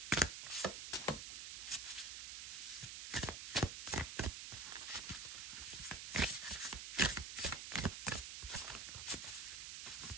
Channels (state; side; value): noise; right; hiss, 6 dB below the sound